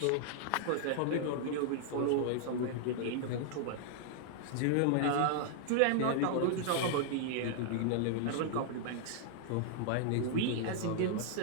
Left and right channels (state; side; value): different; both; correlation 0.00